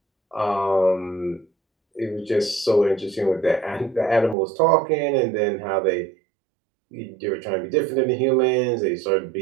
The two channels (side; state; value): left; drops out; at 4.4 s